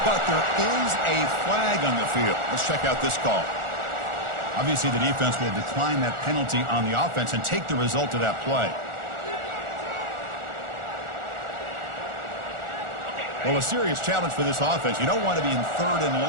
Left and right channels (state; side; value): late; left; 1.4 ms